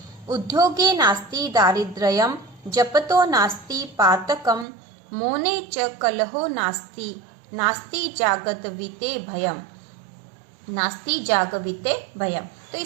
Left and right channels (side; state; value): left; drops out; at 4.7 s